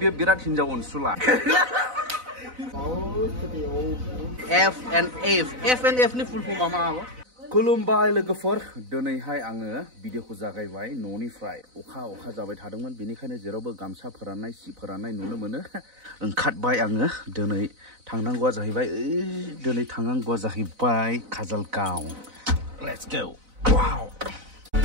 बिराद हिनजाव अनसुला FNF नि फुल फर्म मा आबो खुलुमबाय लोगोफोर दिनैहाय आङो भिडिअखौ जागायबाय न'निफ्राय अखा जाबाय थादोंमोन बेनिखायनो जेरावबो गामसा फोराननाय सि फोराननाय नुनो मोनो ओंखारबाय आङो दिनै थांनांगौआ जाहैबाय काजलगांव लेट्स गो वाव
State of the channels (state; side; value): late; left; 4.0 ms